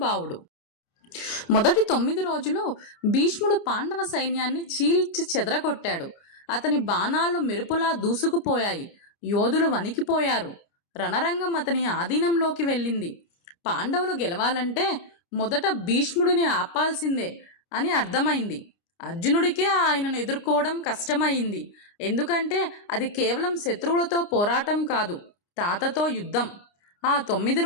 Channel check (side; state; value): right; late; 29 ms